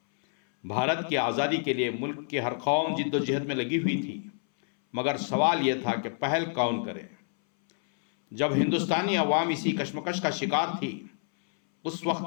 بھارت کی آزادی کے لیے ملک کی ہر قوم جد و جہد میں لگی ہوئی تھی، مگر سوال یہ تھا کہ پہل کون کرے۔ جب ہندوستانی عوام اسی کشمکش کا شکار تھی، اس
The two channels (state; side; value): silent; right; 59 dB below the other